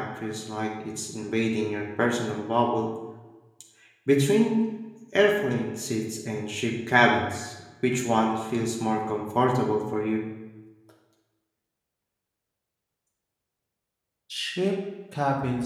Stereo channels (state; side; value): identical; both; correlation 1.00